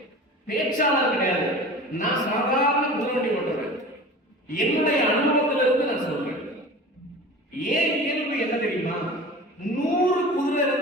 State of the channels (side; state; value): both; normal; correlation 0.37